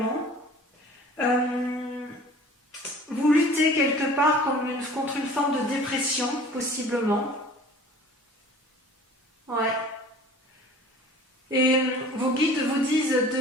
Vous luttez quelque part contre une forme de dépression, possiblement. Ouais. Et vos guides vous disent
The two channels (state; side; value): normal; both; correlation 0.45